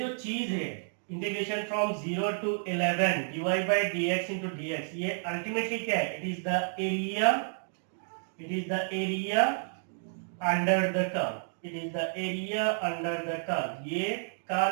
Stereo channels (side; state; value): left; silent; digital silence